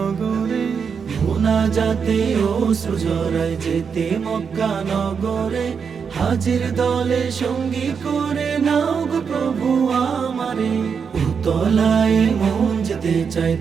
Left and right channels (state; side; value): quieter; left; 6.3 dB